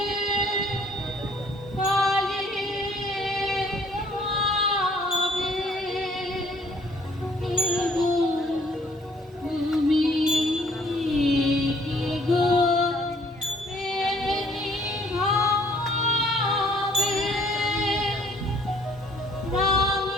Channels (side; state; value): both; normal; correlation 0.60